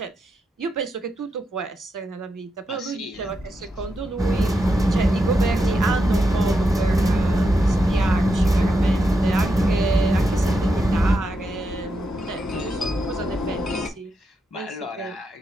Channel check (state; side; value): normal; both; correlation 0.85